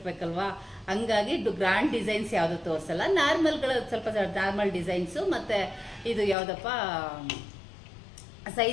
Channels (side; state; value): right; drops out; at 6.4 s